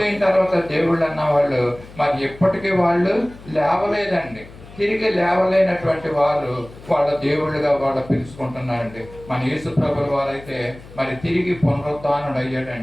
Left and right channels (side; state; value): left; noise; hum, 19 dB below the sound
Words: తర్వాత దేవుళ్ళు అన్న వాళ్ళు మరి ఎప్పటికీ వాళ్ళు లేవలేదండి. తిరిగి లేవలేనటువంటి వారు వాళ్ళ దేవుళ్ళుగా వాళ్ళు పిలుచుకుంటున్నారండి. మన యేసుప్రభుల వారైతే మరి తిరిగి పునరుద్ధానుడు